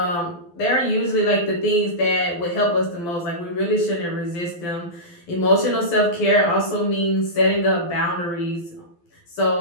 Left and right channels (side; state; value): right; late; 12 ms